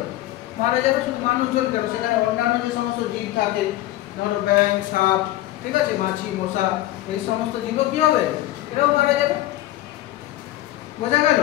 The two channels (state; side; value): quieter; right; 15.4 dB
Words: মারা যাবে। শুধু মানুষজন কেন, সেখানে অন্যান্য যে সমস্ত জীব থাকে, ধরো ব্যাঙ, সাপ, ঠিক আছে, মাছি, মশা, এই সমস্ত জীব কি হবে? এরাও মারা যাবে। বোঝা গেল?